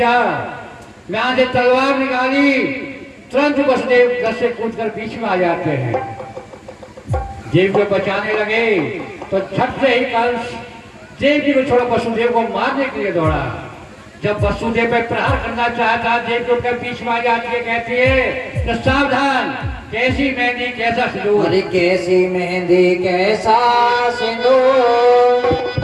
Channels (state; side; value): identical; both; correlation 1.00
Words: यहां से तलवार निकाली, तुरंत वसुदेव रथ से कूदकर बीच में आ जाते हैं। देव को बचाने लगे तो झट से ही कंस देवकी को छोड़ा वसुदेव को मारने के लिए दौड़ा। जब वसुदेव पे प्रहार करना चाहता, देवकी उठकर बीच में आ जाती है, कहती है तो सावधान, कैसी मेहंदी कैसा सिंदूर। अरे कैसी मेहंदी कैसा सिंदूर,